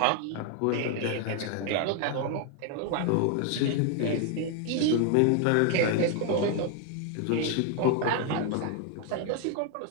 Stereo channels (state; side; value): different; both; correlation 0.00